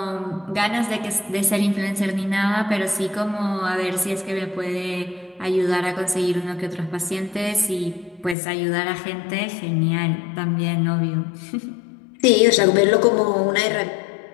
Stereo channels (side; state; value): right; drops out; at 8.3 s